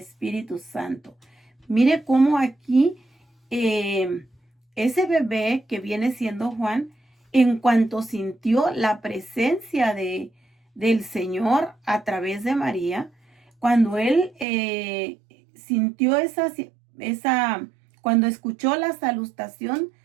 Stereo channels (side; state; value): left; drops out; at 14.5 s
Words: Santo. Mire cómo aquí ese bebé que viene siendo Juan, en cuanto sintió la presencia del Señor a través de María, cuando él sintió cuando escuchó la salutación,